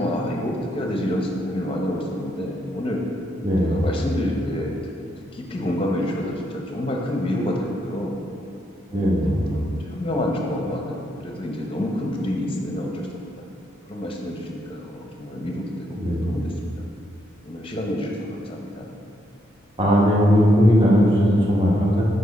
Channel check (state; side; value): normal; both; correlation 0.78